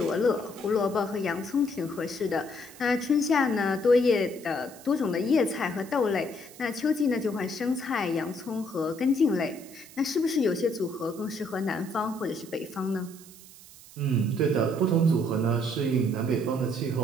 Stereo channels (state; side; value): noise; right; hiss, 20 dB below the sound